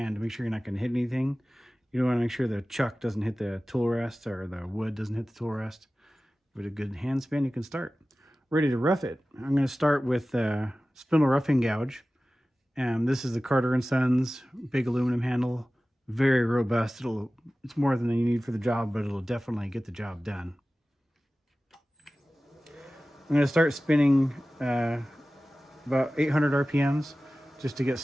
to make sure you're not going to hit anything. You want to make sure the chuck doesn't hit the tool rest, or the wood doesn't hit the tool rest. With a good hand spin, you can start. Ready to rough it. I'm going to start with spindle roughing gouge. This is the Carter & Sons big aluminum handle. Very robust. It's more than you need for the job, but it'll definitely get the job done. I'm going to start spinning about 800 RPMs just to get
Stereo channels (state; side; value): normal; both; correlation 0.96